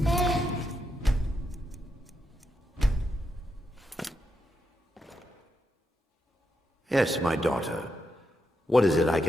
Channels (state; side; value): normal; both; correlation 0.84